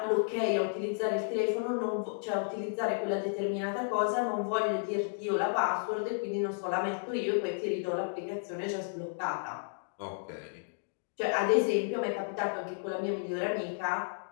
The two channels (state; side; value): silent; right; digital silence